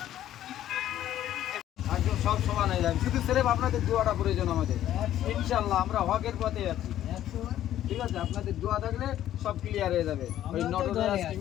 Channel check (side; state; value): right; quieter; 12.3 dB